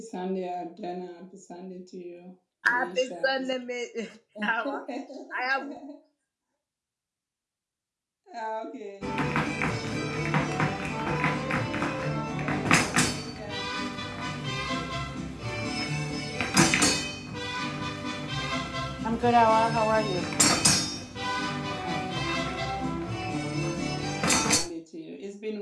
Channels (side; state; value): both; identical; correlation 1.00